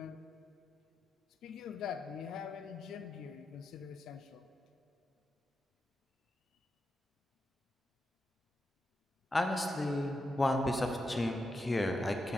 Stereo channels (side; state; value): both; normal; correlation 0.87